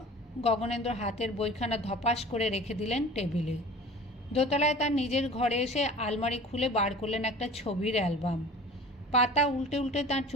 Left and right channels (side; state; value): both; normal; correlation 0.42